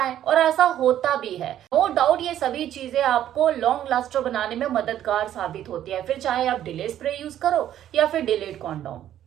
और ऐसा होता भी है। नो डाउट ये सभी चीजें आपको लॉन्ग लास्टर बनाने में मददगार साबित होती है, फिर चाहे आप डिले स्प्रे यूज करो या फिर डिलेड कॉन्डोम।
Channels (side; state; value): left; quieter; 11.5 dB